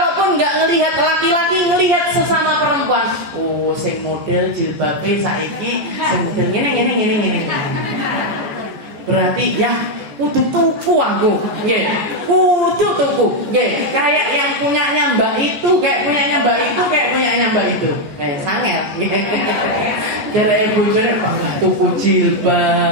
gak ngelihat laki-laki, ngelihat sesama perempuan. Oh, sing model jilbabe saiki sing model ngene. Berarti ya kudu tuku aku, kudu tuku, kayak yang punyanya Mbak itu, kayak punyanya Mbak itu, sangat, dari bojone bangga tuku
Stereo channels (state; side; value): late; left; 14 ms